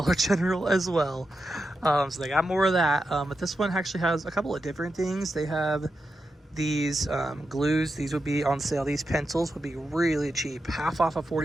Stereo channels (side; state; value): both; normal; correlation 0.88